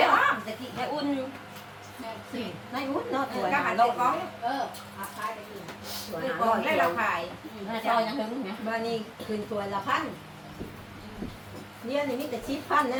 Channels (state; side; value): identical; both; correlation 1.00